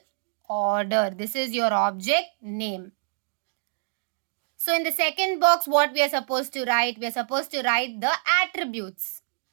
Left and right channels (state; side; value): silent; left; digital silence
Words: order. This is your object name. So in the second box, what we are supposed to write? We are supposed to write the attributes.